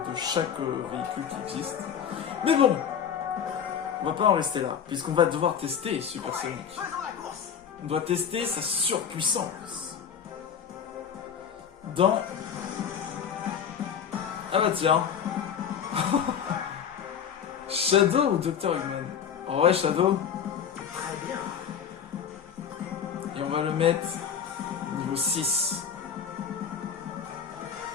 chaque véhicule qui existe. Mais bon, on va pas en rester là, puisqu'on va devoir tester Super Sonic. On doit tester sa surpuissance. Dans... Ah bah tiens. Shadow ou Dr. Eggman? En vrai, Shadow. Très bien. Et on va le mettre niveau 6.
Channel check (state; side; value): quieter; right; 7.8 dB